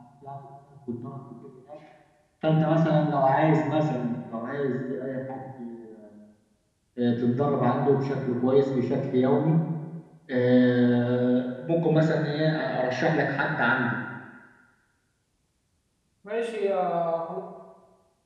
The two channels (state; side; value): identical; both; correlation 1.00